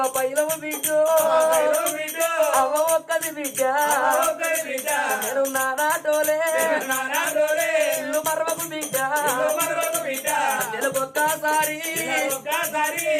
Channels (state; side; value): identical; both; correlation 1.00